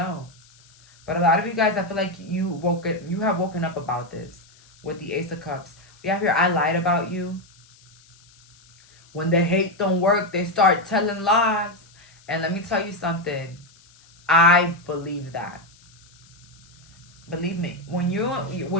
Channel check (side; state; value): left; noise; hiss, 28 dB below the sound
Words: But a lot of you guys, I feel like you have woken up about this with the Ace of Cups. We have here, I lied about you. When the hate don't work, they start telling lies. And let me tell you something. I believe that. Believe me, when